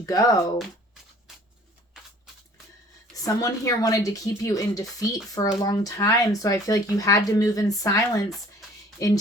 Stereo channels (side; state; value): both; normal; correlation 0.53